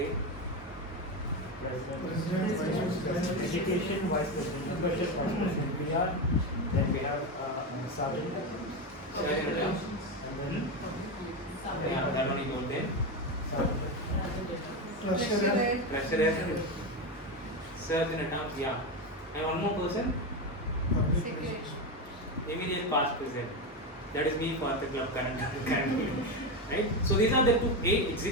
Education, Vice President, Budget, Vice President, PR, then we have Sergeant. Yeah, that one you go then. President. Surgeon at arms, yeah. And one more person? Secretary. Immediate past president. That is me for the club currently. Right? So these are the 8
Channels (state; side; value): normal; both; correlation 0.14